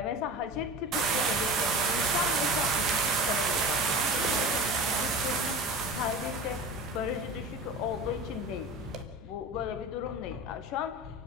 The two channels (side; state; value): both; normal; correlation 0.33